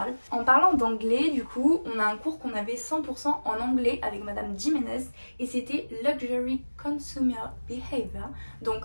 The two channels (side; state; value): both; inverted; correlation -1.00